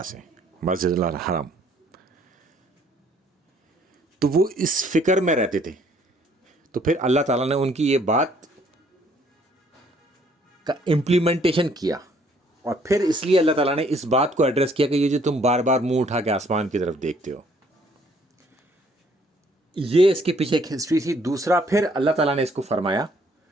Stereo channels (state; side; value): normal; both; correlation 0.63